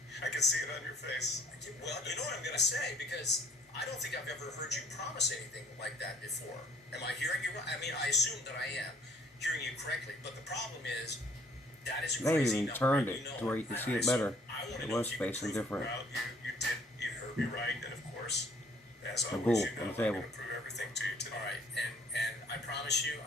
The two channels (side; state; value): both; normal; correlation 0.58